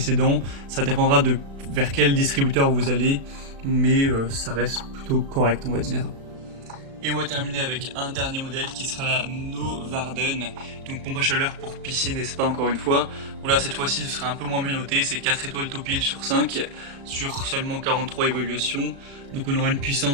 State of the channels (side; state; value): left; late; 36 ms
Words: Ça dépendra de vers quel distributeur vous allez, mais ça reste plutôt correct, on va dire. Et on va terminer avec un dernier modèle qui sera la Novarden, donc pompe à chaleur pour piscine et spa encore une fois. Bon là cette fois-ci ce sera un peu moins bien noté, c'est 4 étoiles Topil sur 5 sur seulement 43 évaluations. Donc on aura une